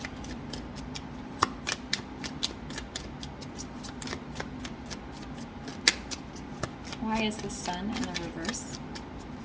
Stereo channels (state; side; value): identical; both; correlation 1.00